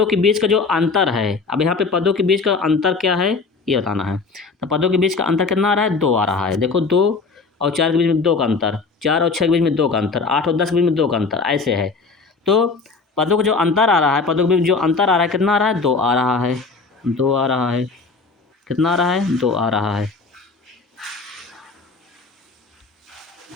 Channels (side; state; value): right; quieter; 4.3 dB